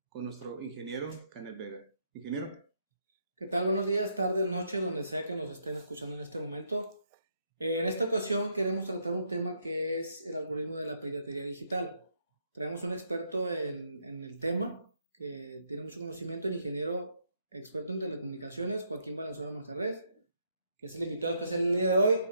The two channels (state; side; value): inverted; both; correlation -0.75